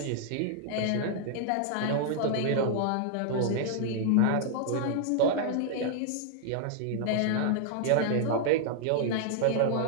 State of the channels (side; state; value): both; different; correlation -0.01